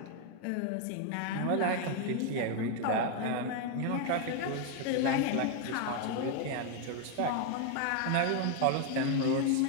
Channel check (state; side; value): different; both; correlation 0.00